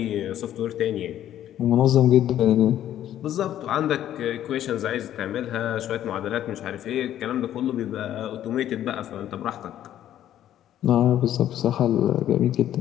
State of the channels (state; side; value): quieter; right; 11.6 dB